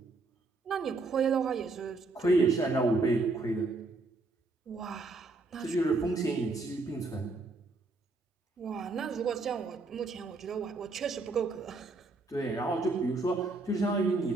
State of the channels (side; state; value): left; quieter; 3.4 dB